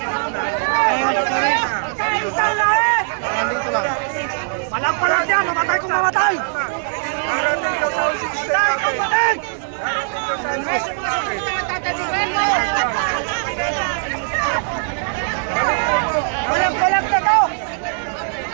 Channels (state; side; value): silent; left; digital silence